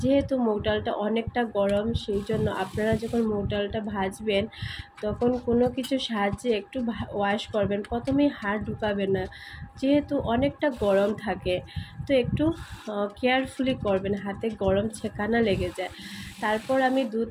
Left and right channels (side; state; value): both; identical; correlation 1.00